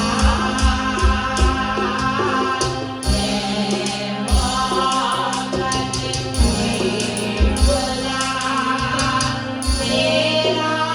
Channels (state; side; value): identical; both; correlation 1.00